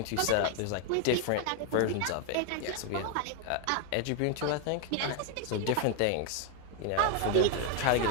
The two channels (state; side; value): different; both; correlation 0.01